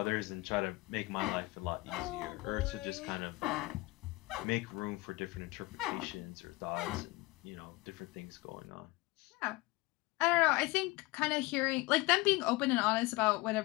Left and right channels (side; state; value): right; quieter; 21.7 dB